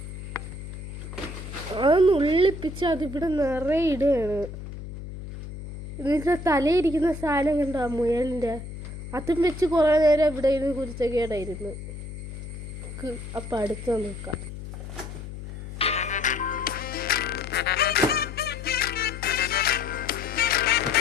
അത് നുള്ളിപ്പിച്ച് അതിവിടെ നിറയെ ഇടുകയാണ്. ഇതിൻ്റെ തലയിരിക്കുന്ന സാധനം കണ്ടോ, മുയലിൻ്റെ, അതും വെച്ച് കുറേ നേരം ഇവിടെ ഇരുന്ന് കുരുത്തക്കേടായിരുന്നു. അപ്പം അടുത്ത് നോക്കാം.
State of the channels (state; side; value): noise; left; hum, 10 dB below the sound